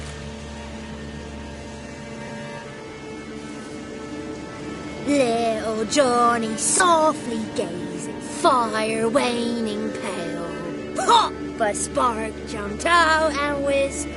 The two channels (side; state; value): both; identical; correlation 1.00